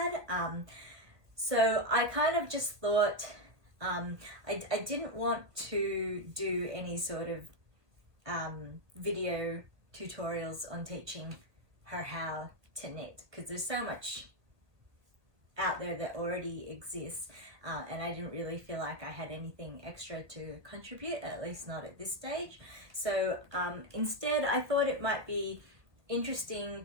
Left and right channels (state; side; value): late; left; 1.7 ms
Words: So I kind of just thought, I didn't want to do any sort of video tutorials on teaching her how to knit, because there's so much out there that already exists, and I didn't really feel like I had anything extra to contribute, at least not at this stage. So instead I thought it might be interesting